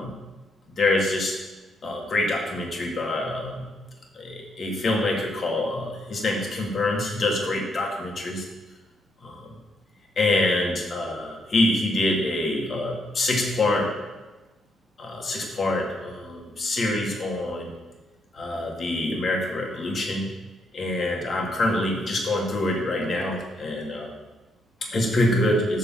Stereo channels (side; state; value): both; normal; correlation 0.76